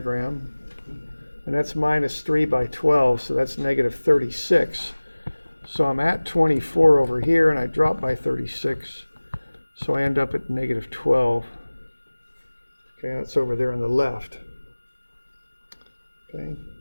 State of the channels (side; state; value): both; inverted; correlation -1.00